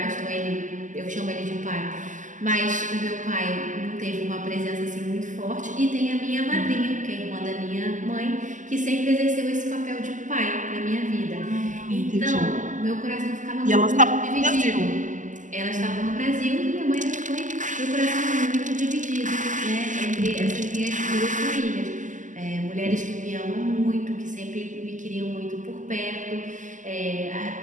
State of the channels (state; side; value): late; left; 0.37 ms